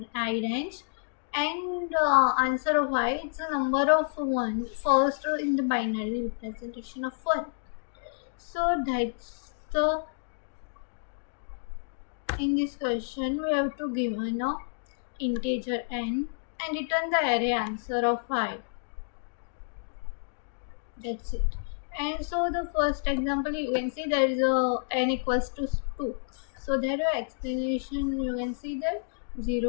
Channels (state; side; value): silent; right; digital silence